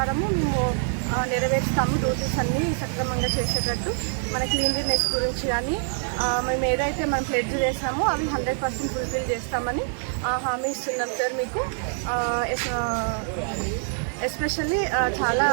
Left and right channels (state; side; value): silent; left; 60 dB below the other